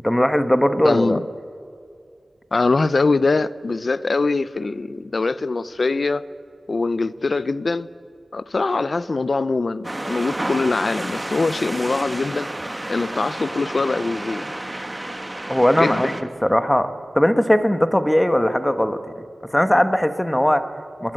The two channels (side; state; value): both; normal; correlation 0.98